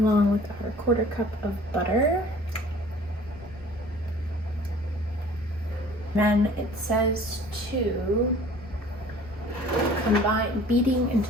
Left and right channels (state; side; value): normal; both; correlation 0.49